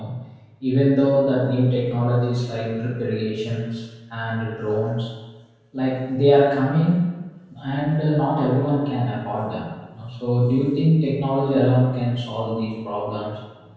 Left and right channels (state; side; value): identical; both; correlation 1.00